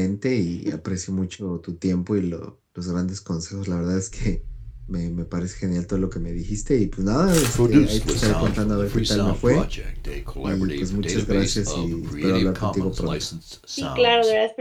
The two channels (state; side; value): identical; both; correlation 1.00